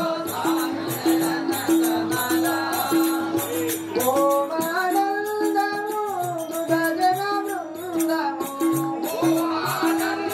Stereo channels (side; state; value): both; identical; correlation 1.00